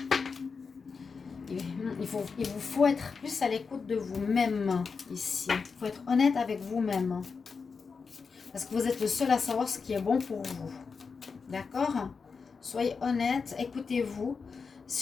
Il vous faut être plus à l'écoute de vous-même ici. Il faut être honnête avec vous-même. Parce que vous êtes le seul à savoir ce qui est bon pour vous. D'accord? Soyez honnête, écoutez-vous.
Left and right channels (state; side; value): quieter; right; 5.2 dB